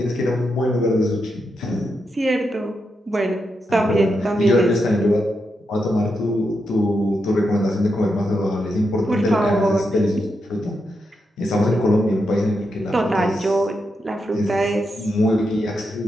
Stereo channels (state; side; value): normal; both; correlation 0.84